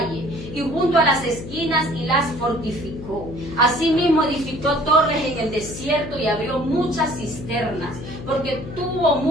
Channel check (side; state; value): left; noise; hum, 11 dB below the sound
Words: y junto a las esquinas, y las fortificó. Asimismo edificó torres en el desierto y abrió muchas cisternas, porque tuvo